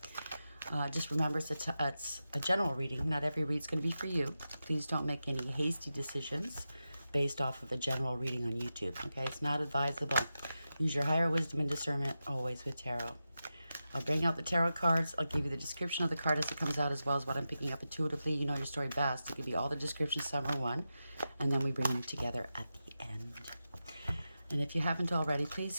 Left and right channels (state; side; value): inverted; both; correlation -0.91